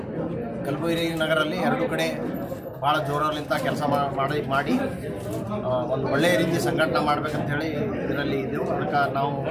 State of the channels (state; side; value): identical; both; correlation 1.00